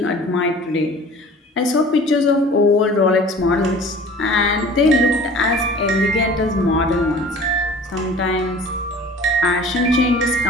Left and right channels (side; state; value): both; normal; correlation 0.45